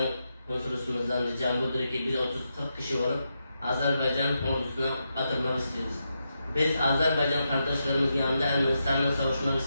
Konsolosluğumuzdan ricam budur ki biz 30-40 kişi olup Azerbaycan ordusuna katılmak istiyoruz. Biz Azerbaycan kardeşlerimizin yanında Ermenistan'la savaşmak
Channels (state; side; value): inverted; both; correlation -0.85